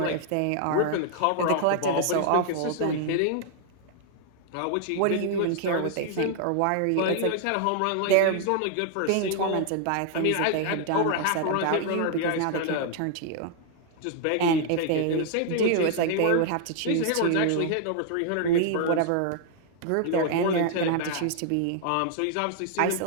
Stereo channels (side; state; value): both; different; correlation 0.00